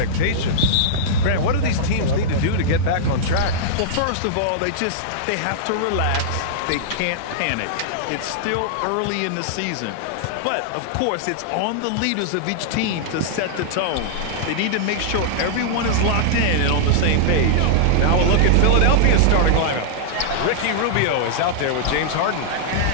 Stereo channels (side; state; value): both; different; correlation -0.02